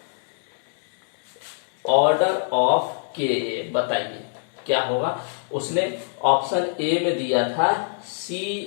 ऑफ के बताइए क्या होगा। उसने ऑप्शन ए में दिया था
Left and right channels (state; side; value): silent; right; digital silence